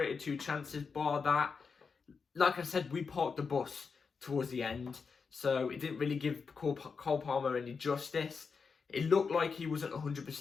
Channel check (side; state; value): right; quieter; 5.3 dB